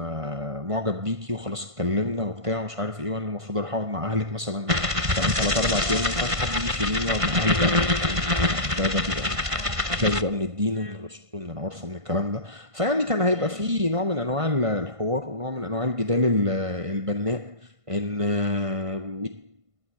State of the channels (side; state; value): left; late; 1.5 ms